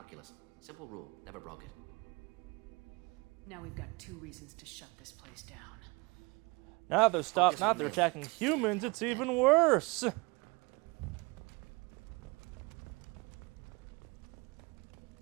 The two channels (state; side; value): quieter; left; 26.9 dB